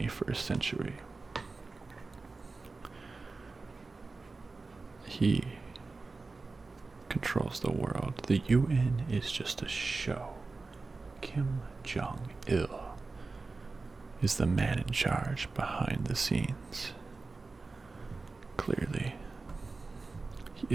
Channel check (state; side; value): quieter; left; 3.8 dB